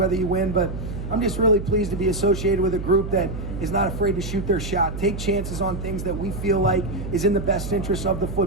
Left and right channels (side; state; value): right; noise; hum, 7 dB below the sound